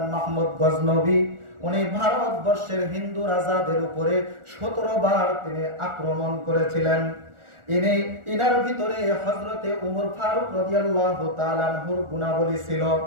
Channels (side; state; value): left; late; 1.4 ms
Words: মাহমুদ গজনবী। উনি ভারতবর্ষের হিন্দু রাজাদের উপরে 17 বার তিনি আক্রমণ করেছিলেন। ইনার ভিতরে হযরতে ওমর ফারুক রাদিয়াল্লাহু তাআলা আনহুর গুণাবলী ছিল।